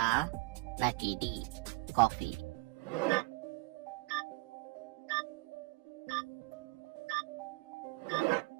নাকি ডি কফি?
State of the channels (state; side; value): quieter; left; 23.8 dB